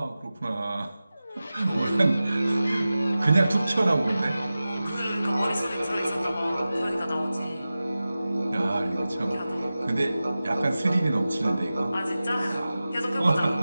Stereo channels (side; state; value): both; inverted; correlation -0.95